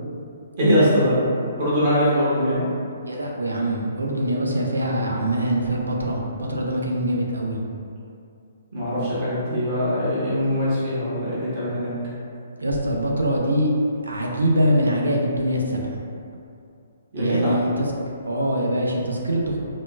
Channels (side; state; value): both; inverted; correlation -0.66